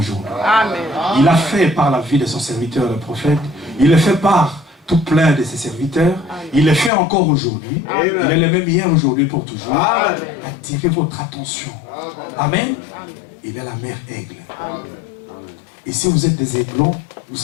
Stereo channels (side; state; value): right; drops out; at 6.9 s